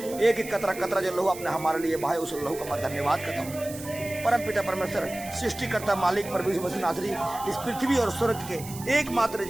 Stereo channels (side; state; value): right; noise; hiss, 14 dB below the sound